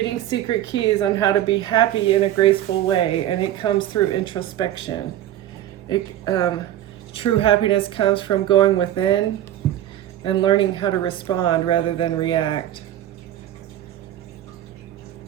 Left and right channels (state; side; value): quieter; left; 12.5 dB